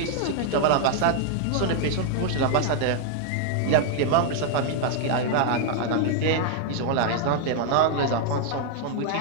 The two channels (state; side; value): different; both; correlation 0.00